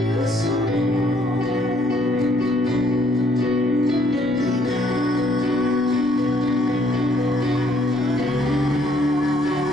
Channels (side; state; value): both; normal; correlation 0.67